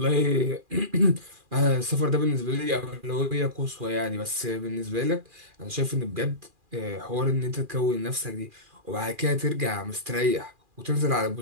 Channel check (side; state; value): left; late; 2.4 ms